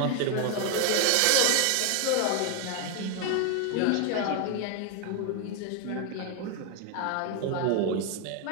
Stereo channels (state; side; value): different; both; correlation 0.01